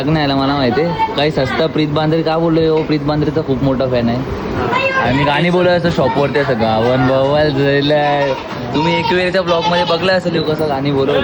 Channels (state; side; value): identical; both; correlation 1.00